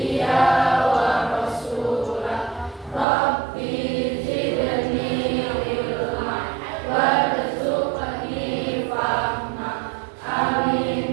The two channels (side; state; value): left; drops out; at 3.1 s